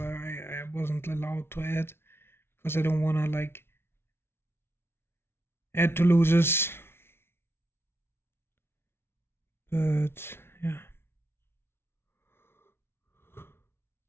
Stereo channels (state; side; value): late; right; 0.12 ms